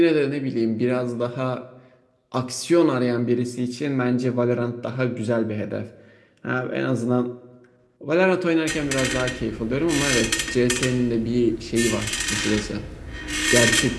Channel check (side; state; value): both; identical; correlation 1.00